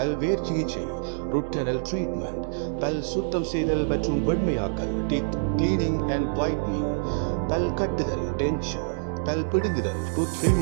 சிகிச்சை, ரூட் கேனல் ட்ரீட்மெண்ட், பல் சுத்தம் செய்தல் மற்றும் வெண்மையாக்கல், டீத் கிளீனிங் அண்ட் வைட்னிங், பல் கட்டுதல், டென்ச்சர், பல் பிடுங்குதல், டூத்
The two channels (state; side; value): silent; left; digital silence